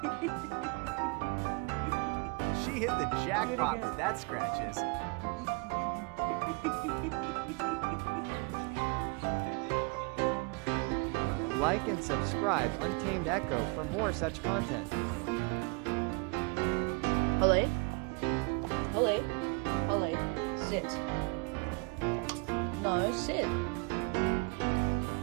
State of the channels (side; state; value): left; quieter; 30.5 dB